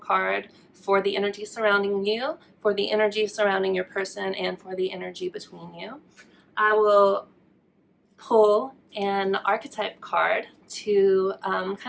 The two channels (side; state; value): both; identical; correlation 1.00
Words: for the energy surrounding you, for the energy surrounding your person, and for the energy between you. I will pull an archetype card to